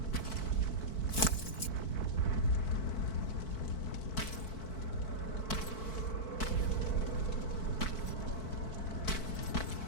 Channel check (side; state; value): right; late; 4.6 ms